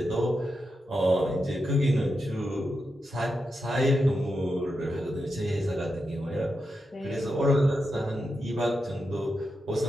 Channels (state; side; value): normal; both; correlation 0.87